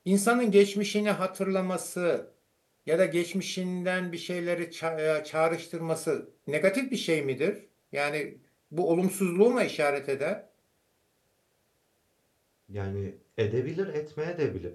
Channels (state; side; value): identical; both; correlation 1.00